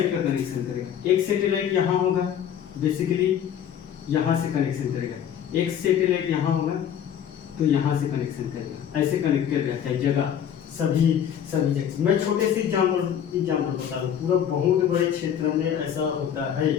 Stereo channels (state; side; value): quieter; right; 9.2 dB